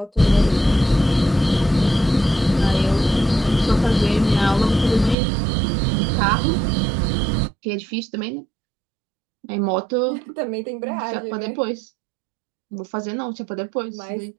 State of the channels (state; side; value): drops out; left; at 5.2 s